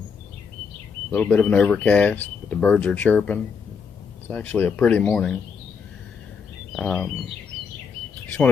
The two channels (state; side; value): quieter; right; 6.0 dB